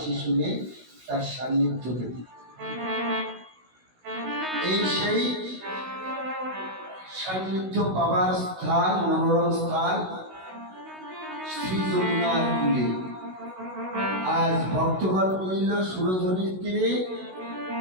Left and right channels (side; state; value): left; late; 16 ms